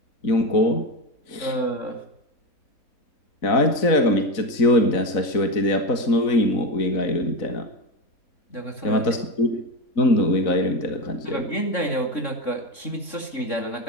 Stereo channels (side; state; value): right; late; 4.0 ms